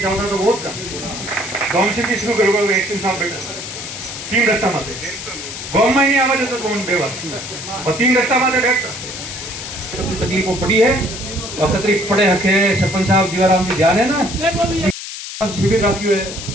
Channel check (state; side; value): noise; left; hiss, 9 dB below the sound